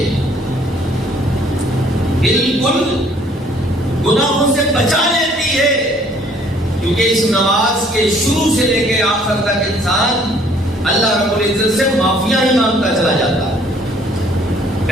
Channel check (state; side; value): normal; both; correlation 0.60